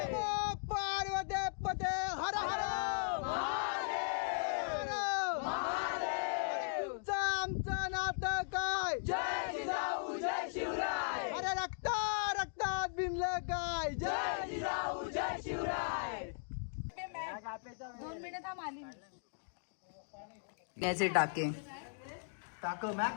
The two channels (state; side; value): silent; right; digital silence